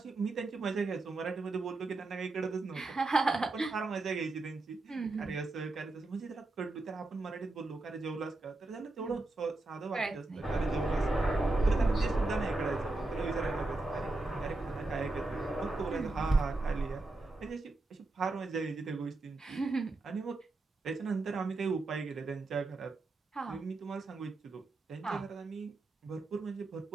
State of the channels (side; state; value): left; quieter; 3.1 dB